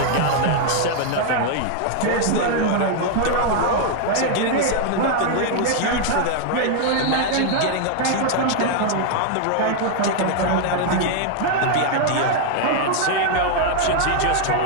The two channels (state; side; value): different; both; correlation 0.00